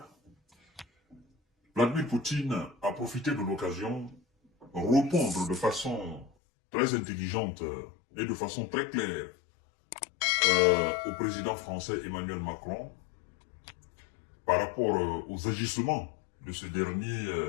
Vladimir Poutine a profité de l'occasion pour répondre de façon très intelligente et de façon très claire au président français Emmanuel Macron par rapport aux agissements de ce dernier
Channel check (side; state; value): right; drops out; at 6.3 s